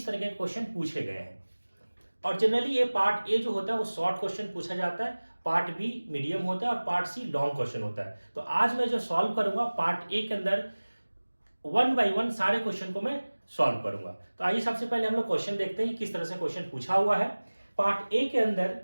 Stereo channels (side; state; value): both; inverted; correlation -1.00